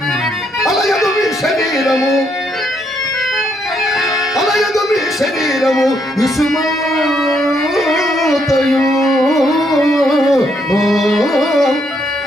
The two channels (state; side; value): normal; both; correlation 0.74